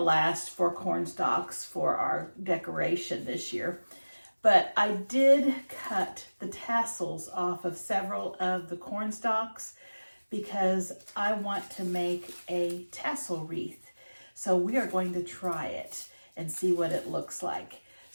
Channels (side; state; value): both; inverted; correlation -1.00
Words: for corn stalks for our decoration this year. But I did cut the tassels off of several of the corn stalks because I want to make a tassel wreath. So we are going to try it and see what it looks like.